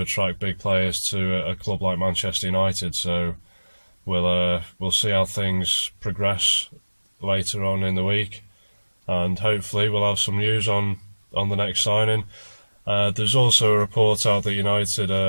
attract big players to a club like Manchester United. So we'll see how things progress later on in the week, and hopefully we'll have some news on on the next signing. There's also a report out that United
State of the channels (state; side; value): inverted; both; correlation -1.00